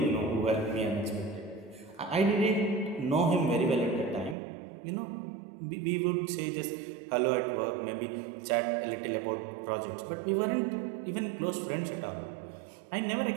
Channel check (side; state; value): left; drops out; at 4.4 s